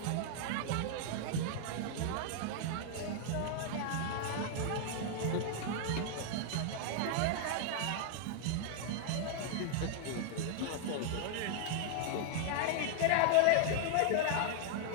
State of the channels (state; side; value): different; both; correlation 0.00